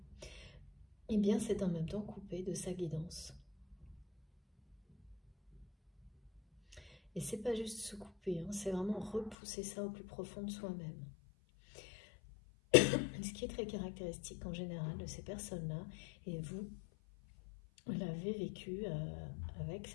eh bien c'est en même temps coupé de sa guidance. Et c'est pas juste se couper, c'est vraiment repousser ça au plus profond de soi-même. Ce qui est très caractéristique en général de ces personnes-là, et vous l'avez vécu avec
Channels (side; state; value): right; drops out; at 9.3 s